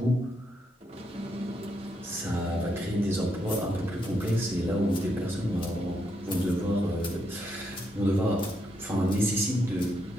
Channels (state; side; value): normal; both; correlation 0.79